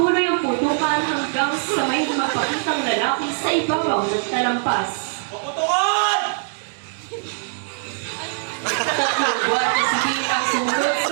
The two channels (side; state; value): left; silent; 64 dB below the other